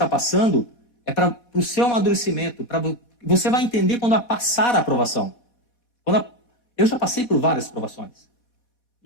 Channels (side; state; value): right; late; 4.1 ms